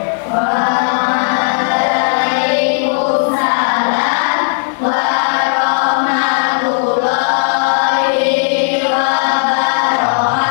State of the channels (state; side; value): silent; right; digital silence